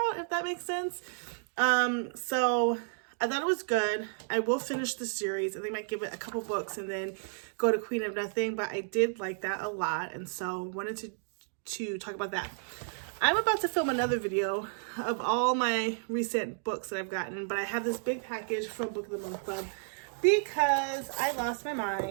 if that makes sense. So I thought it was good. I will finish the series. I think I might give it a couple books and then go to Queen of Nothing, but I did like that a lot. And so wanted to talk about that. I'm about to film another video of all my recent books that I've gotten, but I have this big package from Book of the Month Club because I lost my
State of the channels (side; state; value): left; silent; digital silence